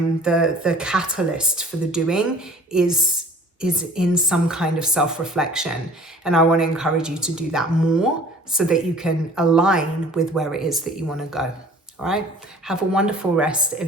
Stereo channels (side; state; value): both; normal; correlation 0.49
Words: the catalyst for the doing is in some kind of self-reflection. And I want to encourage you to do that more, so that you can align with where it is that you want to go. All right. Have a wonderful rest